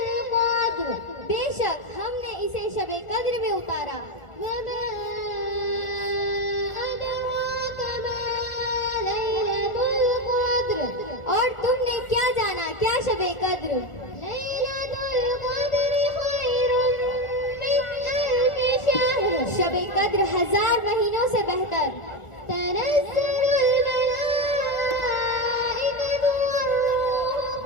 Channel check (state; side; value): late; right; 1.4 ms